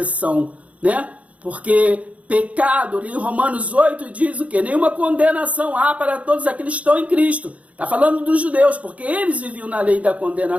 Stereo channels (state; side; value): late; left; 0.066 ms